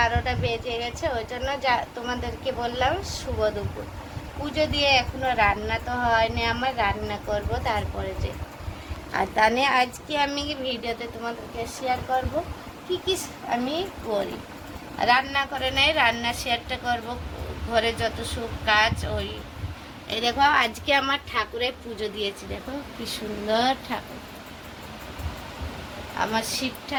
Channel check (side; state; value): both; identical; correlation 1.00